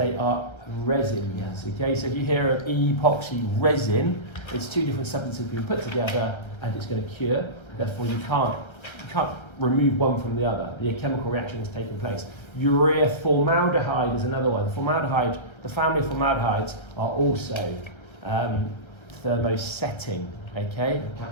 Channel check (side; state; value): right; late; 1.3 ms